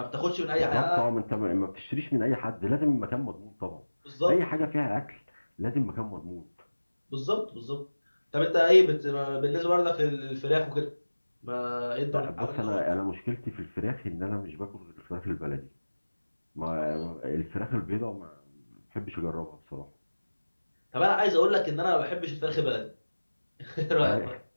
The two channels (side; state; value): both; inverted; correlation -1.00